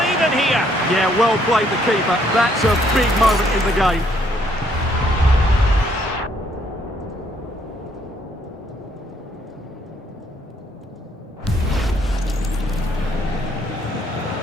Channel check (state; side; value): normal; both; correlation 0.68